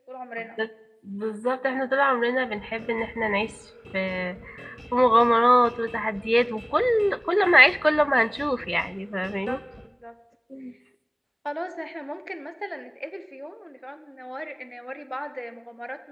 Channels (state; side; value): identical; both; correlation 1.00